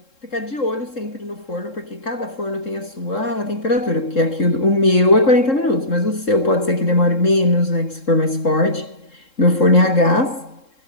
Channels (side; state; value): right; late; 3.7 ms